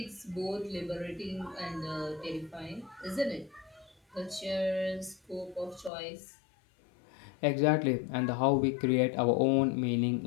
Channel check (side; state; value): right; drops out; at 5.9 s